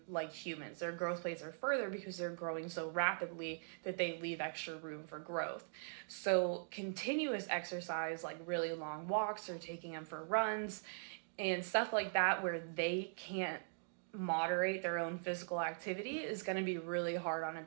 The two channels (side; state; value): left; silent; digital silence